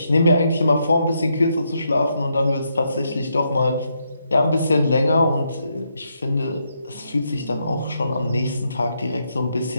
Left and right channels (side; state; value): both; inverted; correlation -0.79